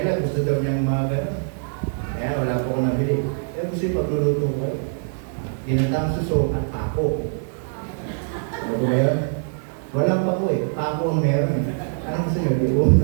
gusto daw niyang mga gano'n. Kaya wala po ko nabili. Kaya gusto yung pagluluto ko. Ginatang suso at pako. Ano ba yun? Walang pako eh. Pako ang meron eh. Anong gusto niyo? Diuon,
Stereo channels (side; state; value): left; silent; digital silence